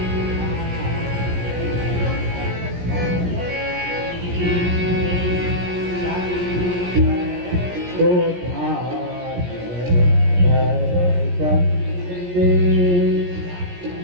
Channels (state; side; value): late; left; 17 ms